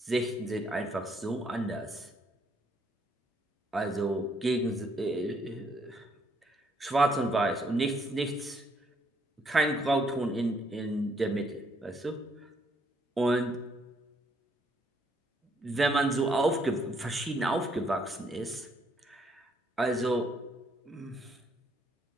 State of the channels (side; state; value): both; normal; correlation 0.70